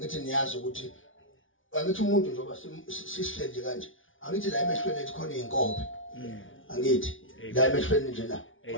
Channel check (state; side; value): late; right; 0.57 ms